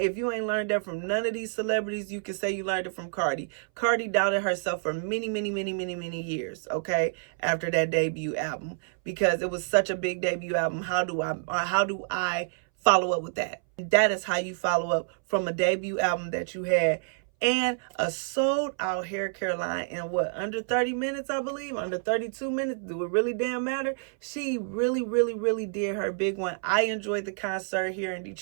you ain't learned that from none of these celebrities, you can say you learned it from Cardi. Cardi doubted herself for many years, okay, after that debut album, because it was such a big debut album. How do I follow up with that? That is how you follow up from a debut album that you had. And a sold out hair care line in under 30 minutes, I believe, under 32 minutes. Do it really damn matter? She really did her big one. I enjoyed the concert here in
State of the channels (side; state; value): left; silent; 59 dB below the other